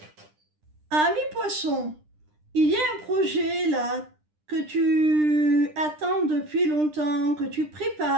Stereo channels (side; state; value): left; late; 9.9 ms